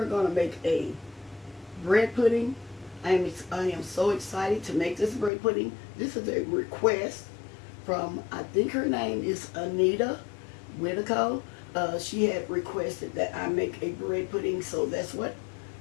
going to make a bread pudding. I am so excited to make this bread pudding. This is a request from, I think her name is Anita Whitaco. She had requested that I make a bread pudding, so that's what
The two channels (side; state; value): right; drops out; at 5.3 s